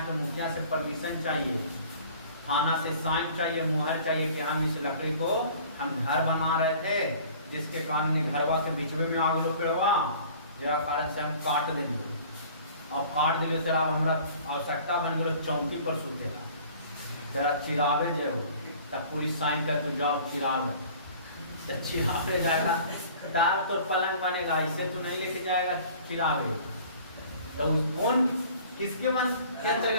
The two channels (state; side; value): inverted; both; correlation -0.48